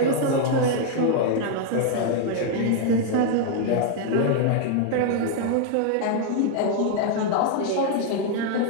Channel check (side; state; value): both; different; correlation 0.00